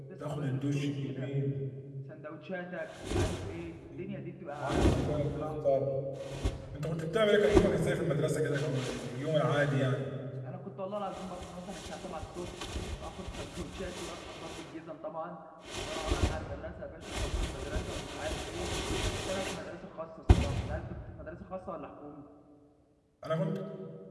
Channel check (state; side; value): identical; both; correlation 1.00